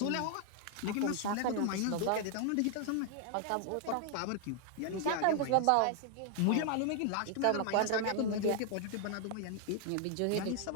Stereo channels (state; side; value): different; both; correlation 0.00